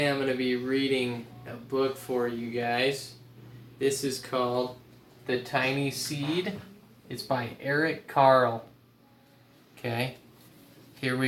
I'm going to be reading a book for you guys. This is called The Tiny Seed. It's by Eric Carle. Okay, here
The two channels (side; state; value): both; identical; correlation 1.00